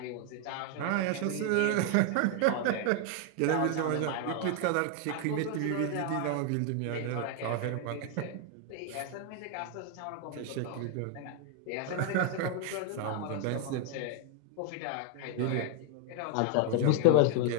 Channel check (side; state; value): both; different; correlation 0.00